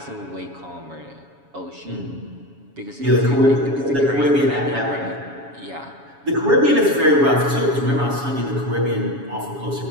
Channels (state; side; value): late; left; 7.2 ms